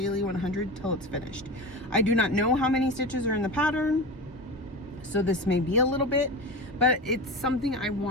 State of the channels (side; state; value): both; normal; correlation 0.26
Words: 100 till it's finished. I do not know how many stitches are in the pattern, so this may be a little bit, but it's something I